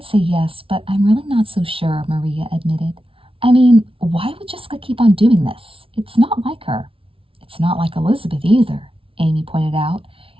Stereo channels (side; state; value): left; late; 0.26 ms